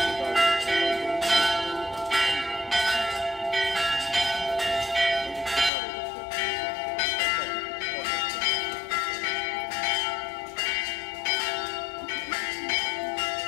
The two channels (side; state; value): right; drops out; at 5.7 s